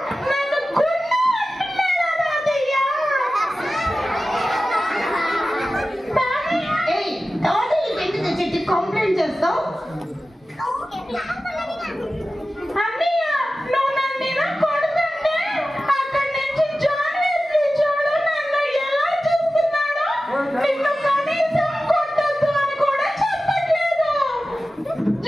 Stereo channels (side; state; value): both; normal; correlation 0.95